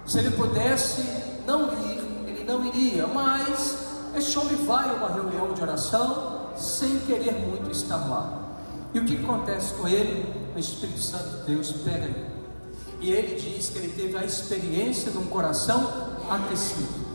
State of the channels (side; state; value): both; inverted; correlation -1.00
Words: Se ele pudesse não ir, ele não iria. Mas esse homem vai a uma reunião de oração sem querer muito estar lá. E o que acontece com ele? O Espírito Santo de Deus pega ele, e ele diz que ele teve a experiência de um coração aquecido.